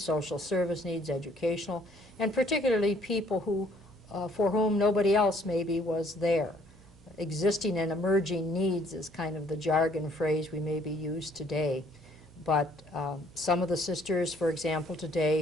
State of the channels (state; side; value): normal; both; correlation 0.62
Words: social service needs, educational, and particularly people who, for whom nobody else maybe was there. Existing and emerging needs is kind of the jargon phrase we maybe use today. But some of the sisters, for example,